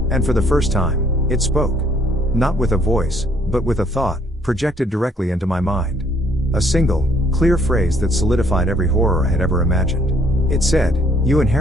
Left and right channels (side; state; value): both; normal; correlation 0.64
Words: And for the first time, it spoke. Not with a voice, but with a thought, projected directly into my mind. A single, clear phrase that solidified every horror I had ever imagined. It said, "You